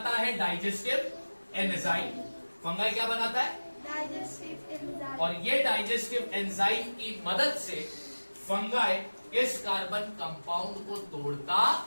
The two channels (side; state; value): both; inverted; correlation -1.00